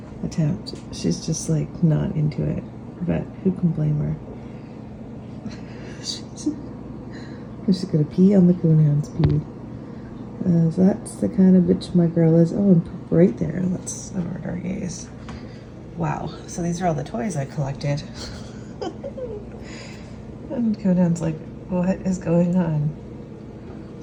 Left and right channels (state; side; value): identical; both; correlation 1.00